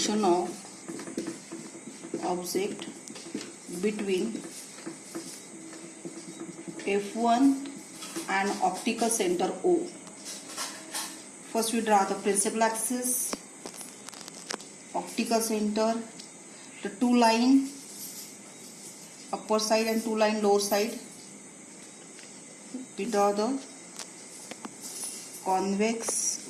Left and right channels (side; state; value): both; identical; correlation 1.00